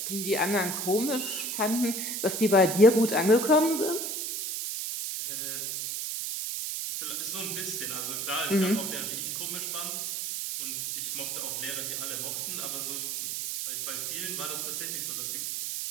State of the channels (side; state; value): right; noise; hiss, 2 dB below the sound